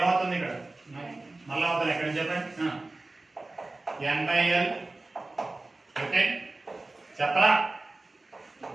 ఇక్కడ మళ్ళీ అవుతుంది. ఎక్కడ చెప్పండి. N by L. ఓకే చెప్పరా?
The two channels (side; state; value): left; quieter; 3.1 dB